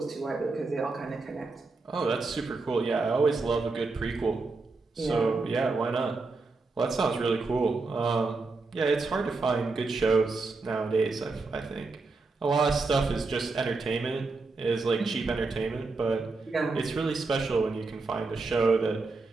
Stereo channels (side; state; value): left; quieter; 3.8 dB